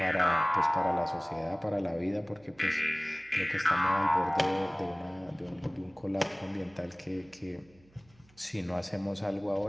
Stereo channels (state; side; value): noise; right; hum, 30 dB below the sound